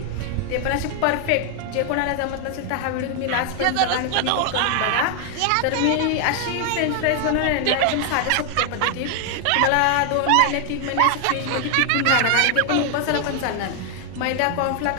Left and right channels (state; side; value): different; both; correlation 0.00